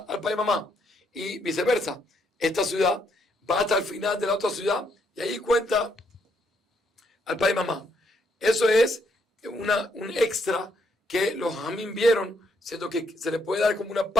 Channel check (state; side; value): normal; both; correlation 0.73